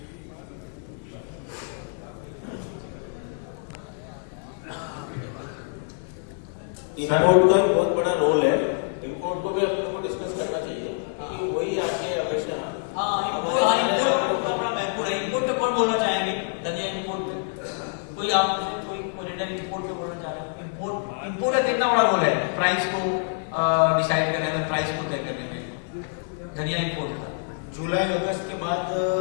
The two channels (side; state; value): right; silent; 61 dB below the other